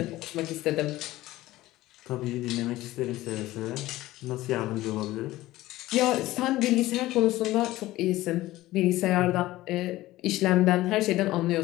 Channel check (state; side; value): quieter; right; 16.9 dB